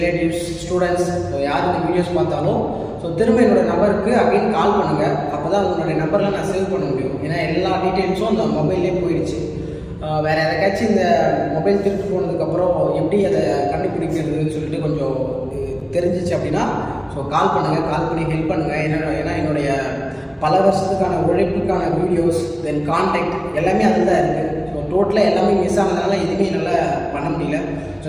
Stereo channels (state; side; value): identical; both; correlation 1.00